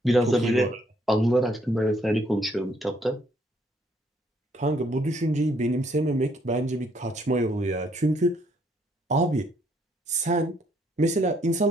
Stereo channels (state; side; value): normal; both; correlation 0.68